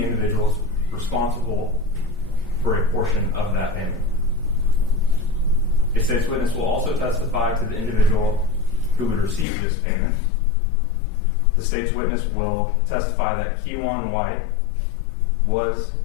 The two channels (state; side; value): drops out; right; at 9.5 s